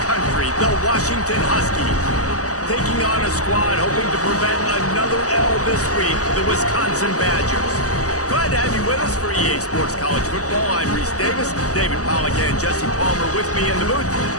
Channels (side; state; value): right; late; 0.66 ms